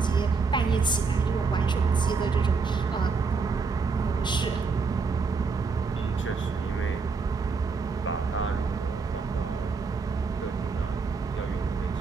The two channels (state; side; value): quieter; left; 4.7 dB